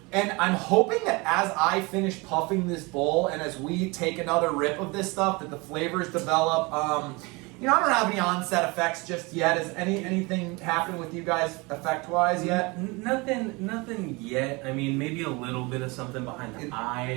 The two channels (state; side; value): quieter; left; 26.1 dB